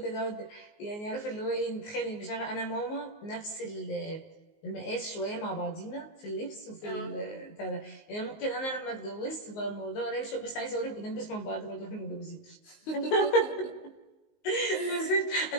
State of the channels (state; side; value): late; right; 19 ms